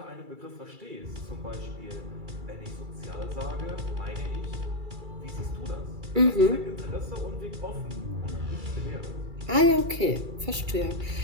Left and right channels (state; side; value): late; left; 2.3 ms